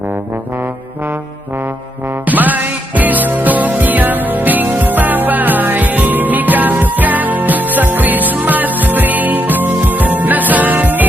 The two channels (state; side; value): normal; both; correlation 0.78